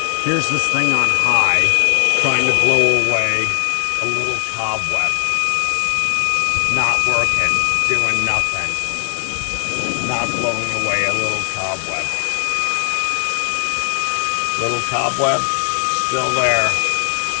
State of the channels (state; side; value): silent; right; 66 dB below the other